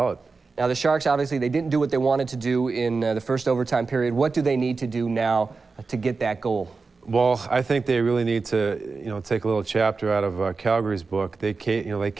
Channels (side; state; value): left; quieter; 4.3 dB